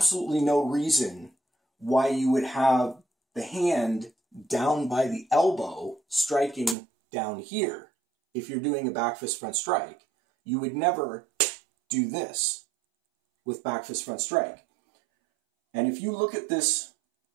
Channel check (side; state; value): left; drops out; at 6.8 s